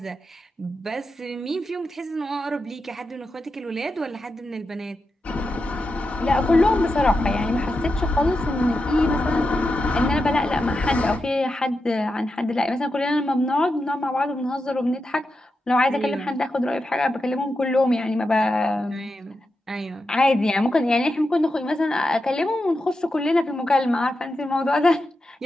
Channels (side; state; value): both; normal; correlation 0.88